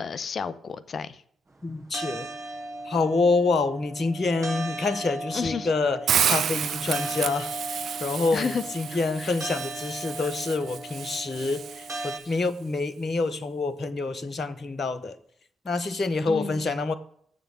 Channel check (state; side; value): normal; both; correlation 0.77